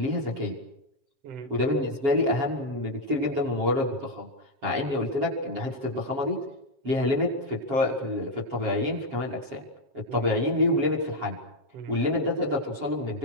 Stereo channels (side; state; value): left; late; 7.5 ms